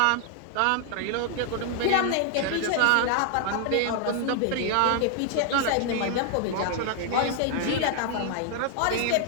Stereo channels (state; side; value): different; both; correlation 0.00